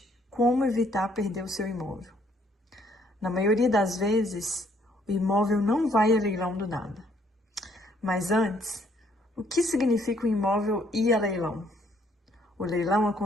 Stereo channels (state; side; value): normal; both; correlation 0.67